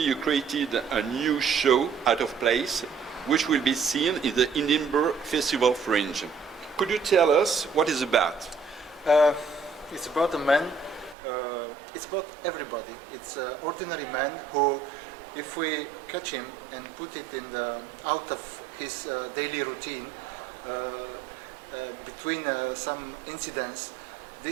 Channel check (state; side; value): drops out; left; at 11.2 s